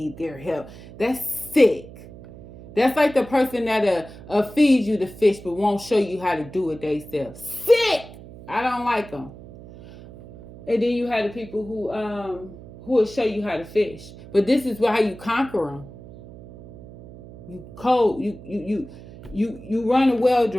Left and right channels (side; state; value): right; noise; hum, 17 dB below the sound